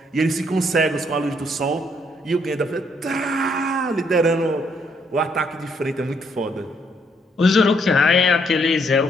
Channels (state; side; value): normal; both; correlation 0.71